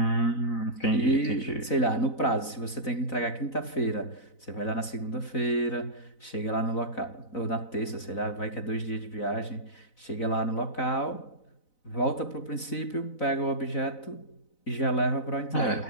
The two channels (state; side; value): late; right; 4.0 ms